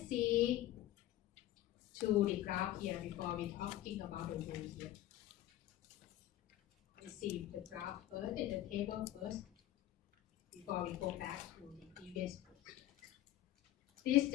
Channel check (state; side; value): quieter; right; 13.9 dB